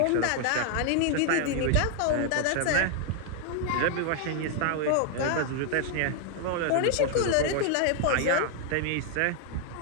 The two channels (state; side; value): different; both; correlation 0.00